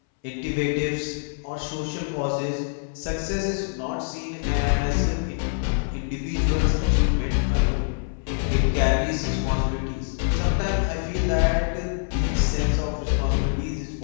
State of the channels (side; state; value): right; silent; 62 dB below the other